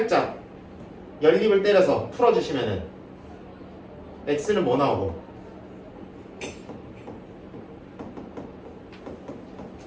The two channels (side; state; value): both; identical; correlation 1.00